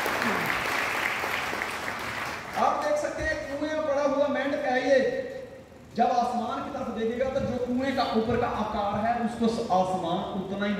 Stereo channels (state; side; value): identical; both; correlation 1.00